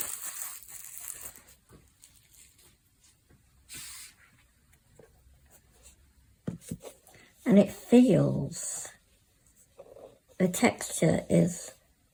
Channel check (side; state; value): both; identical; correlation 1.00